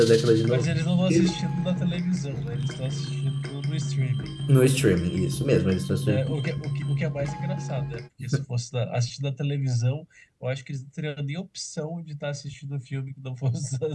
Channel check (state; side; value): identical; both; correlation 1.00